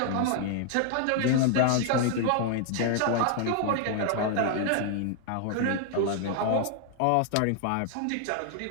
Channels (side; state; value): both; different; correlation 0.00